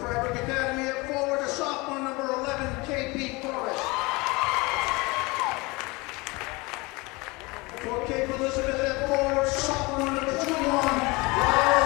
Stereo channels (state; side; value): quieter; right; 24.8 dB